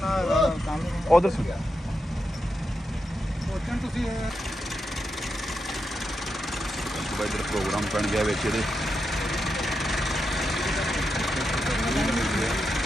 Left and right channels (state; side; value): normal; both; correlation 0.86